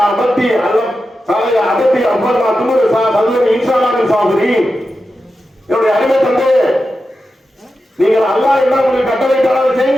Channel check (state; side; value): normal; both; correlation 0.91